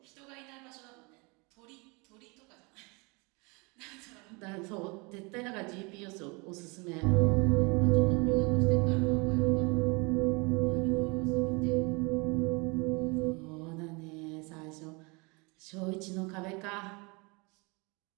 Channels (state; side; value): quieter; left; 29.0 dB